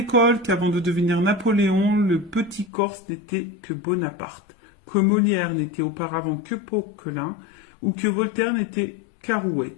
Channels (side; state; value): right; drops out; at 2.7 s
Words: qu'avant de devenir Napoléon, le petit Corse n'était que Bonaparte, que Molière n'était auparavant que Poquelin, ou que Voltaire n'était qu'Arouet.